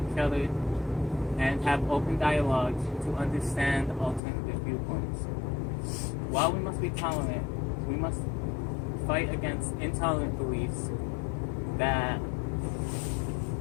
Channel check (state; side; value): drops out; right; at 4.2 s